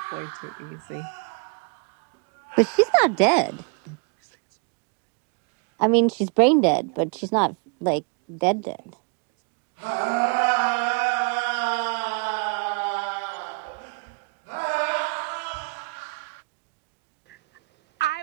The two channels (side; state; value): left; quieter; 30.6 dB